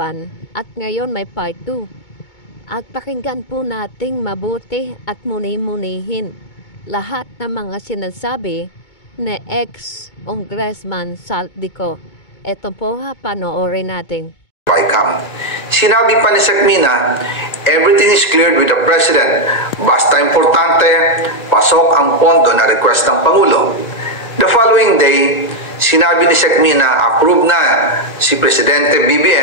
at ngayon may part 2. At pakinggan po nating mabuti at muni-munihin lahat ng mga sinasabi ni ex-Congressman Saldico. Ito po panoorin natin. Sinabi pa ni Sekmina, everything is cleared with the President. Basta importante, pasok ang pondo na request ng Pangulo. The following day, sinabi ni Sekmina, approve na si Presidente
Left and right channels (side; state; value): right; late; 2.2 ms